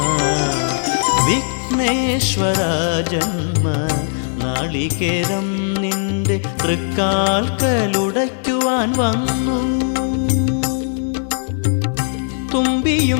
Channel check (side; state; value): right; silent; digital silence